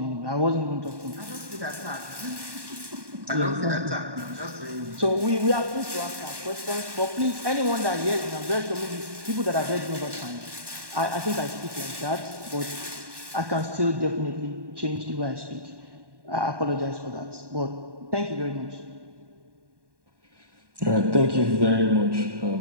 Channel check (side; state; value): left; late; 1.1 ms